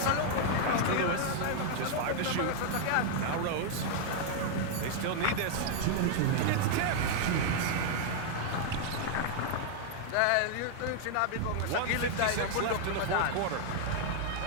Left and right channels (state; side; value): different; both; correlation 0.00